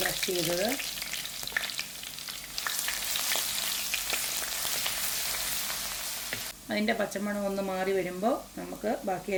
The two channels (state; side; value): identical; both; correlation 1.00